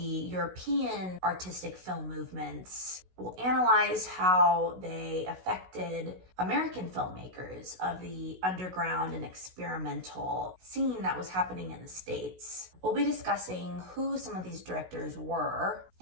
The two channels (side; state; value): left; late; 16 ms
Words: artistic film movements. We'll analyze how they affected American filmmakers of the underground and experimental scene that was happening in the States. We'll be discussing who some of these directors were